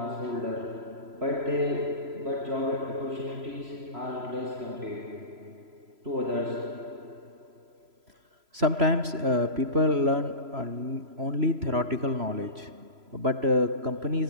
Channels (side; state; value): left; late; 3.0 ms